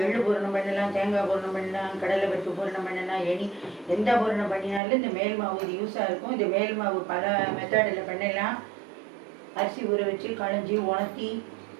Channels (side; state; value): left; drops out; at 4.8 s